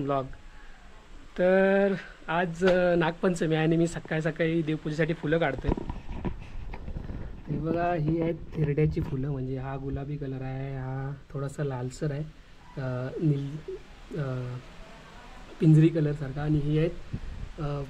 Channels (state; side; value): identical; both; correlation 1.00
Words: ब्लॉग. तर आज नागपंचमी आहे आणि मी सकाळी सकाळी देवपूजेसाठी फुलं काढतो आहे. हे बघा, ही आहेत थिरड्याची फुलं. म्हणजे हा गुलाबी कलर आहे, हा थोडासा लालसर आहे, पिंजरी कलरसारखा. आणि ही आहेत